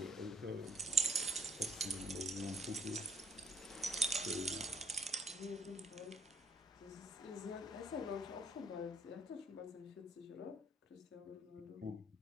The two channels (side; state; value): both; normal; correlation 0.60